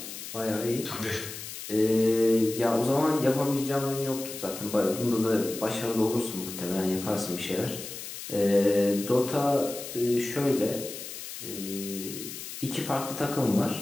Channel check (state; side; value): noise; left; hiss, 10 dB below the sound